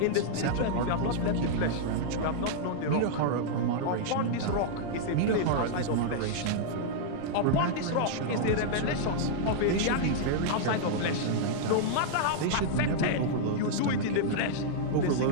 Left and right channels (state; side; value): different; both; correlation -0.01